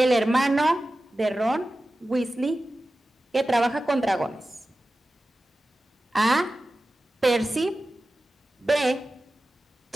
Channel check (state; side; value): normal; both; correlation 0.95